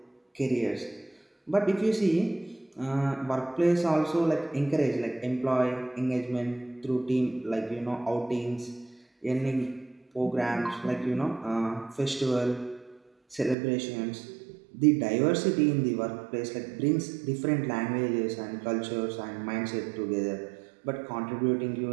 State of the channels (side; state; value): left; drops out; at 13.6 s